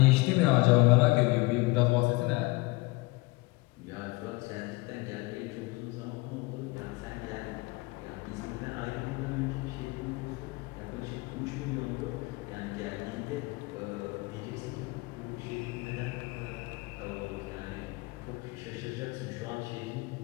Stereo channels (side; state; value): right; quieter; 24.0 dB